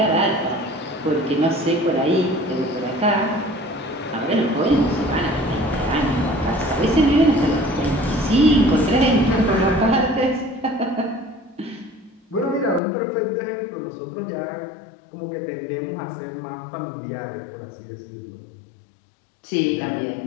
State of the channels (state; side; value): drops out; right; at 12.8 s